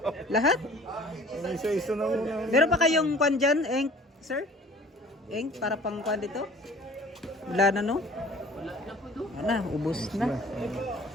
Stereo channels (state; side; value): normal; both; correlation 0.48